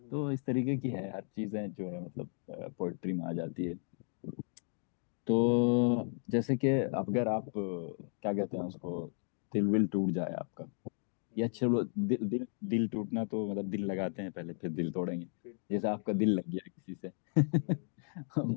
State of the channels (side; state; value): right; silent; 55 dB below the other